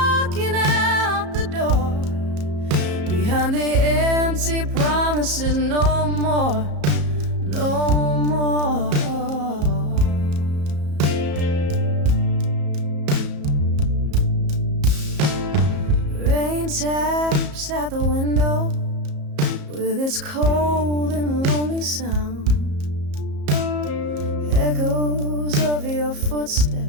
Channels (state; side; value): late; left; 34 ms